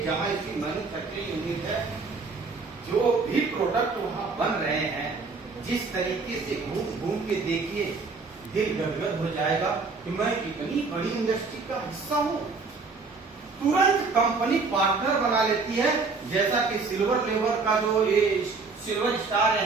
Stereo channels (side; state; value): left; quieter; 4.3 dB